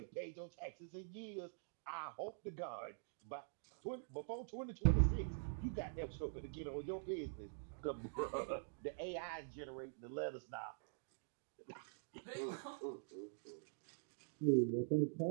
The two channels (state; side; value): silent; left; digital silence